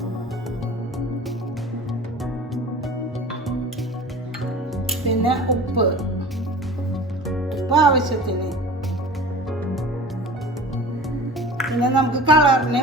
പിന്നെ ഉപ്പ് ആവശ്യത്തിന്. പിന്നെ നമുക്ക് കളറിന്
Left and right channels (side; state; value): both; normal; correlation 0.39